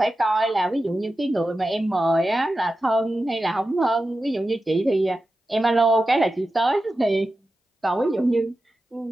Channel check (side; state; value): both; normal; correlation 0.92